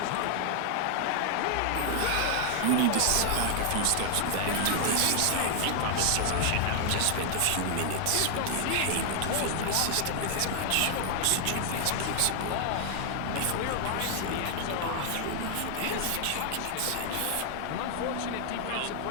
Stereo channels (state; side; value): different; both; correlation 0.00